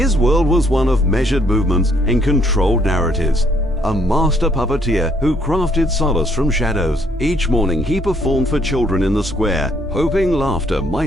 world was one of measured movements and controlled narratives. A master puppeteer who crafted solace from shadows. Each morning he performed for children in the square, hoping laughter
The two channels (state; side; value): normal; both; correlation 0.67